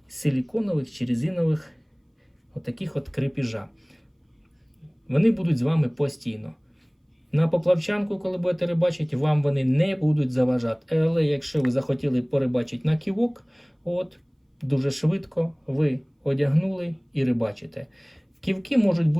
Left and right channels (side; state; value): both; identical; correlation 1.00